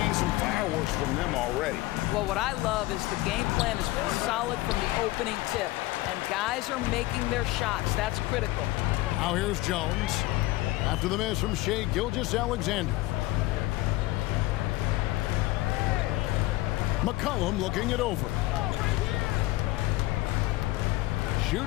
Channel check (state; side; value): quieter; right; 18.5 dB